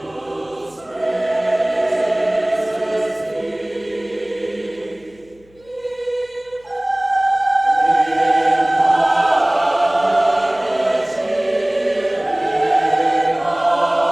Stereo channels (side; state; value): left; noise; hum, 30 dB below the sound